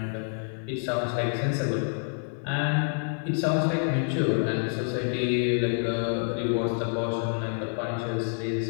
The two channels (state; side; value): silent; right; 59 dB below the other